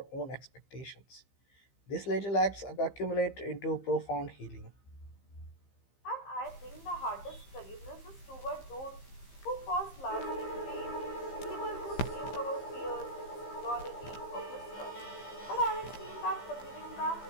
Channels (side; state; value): right; late; 15 ms